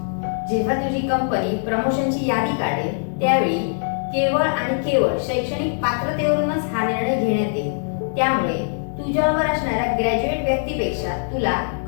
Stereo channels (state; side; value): silent; right; digital silence